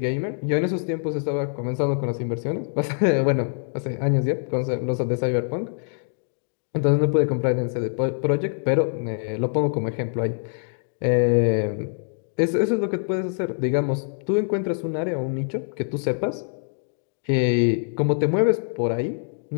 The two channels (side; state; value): right; silent; digital silence